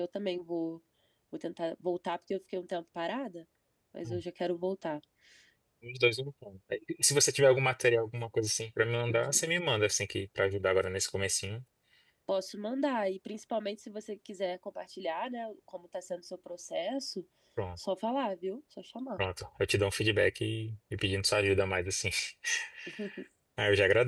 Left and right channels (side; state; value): both; identical; correlation 1.00